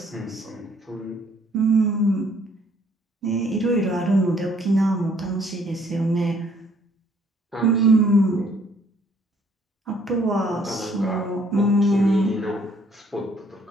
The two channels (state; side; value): normal; both; correlation 0.63